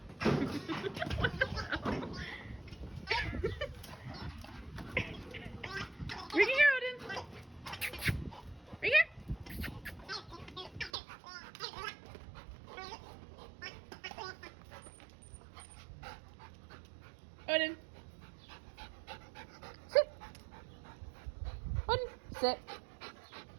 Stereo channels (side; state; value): left; drops out; at 10.9 s